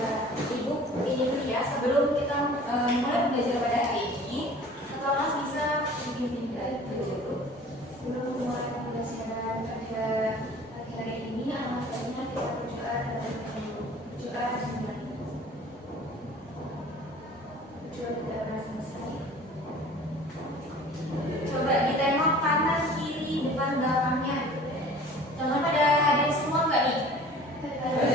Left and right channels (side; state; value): both; normal; correlation 0.46